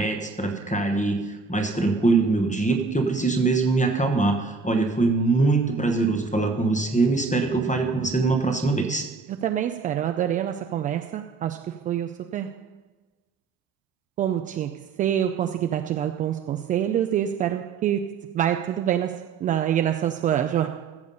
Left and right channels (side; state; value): left; quieter; 4.8 dB